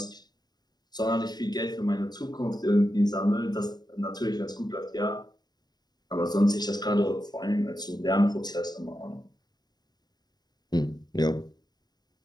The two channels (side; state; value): right; late; 0.20 ms